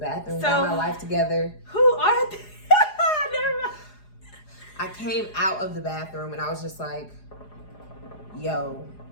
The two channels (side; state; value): right; late; 4.9 ms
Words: got my life together. Who are they? Never mind. I came out of the bathroom and I was just like, yo,